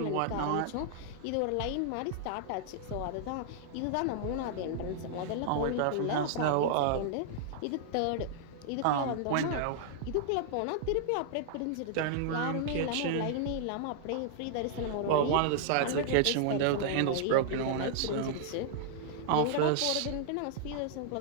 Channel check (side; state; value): both; different; correlation -0.01